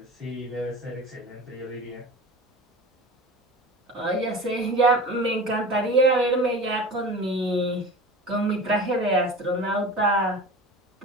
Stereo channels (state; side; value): normal; both; correlation 0.35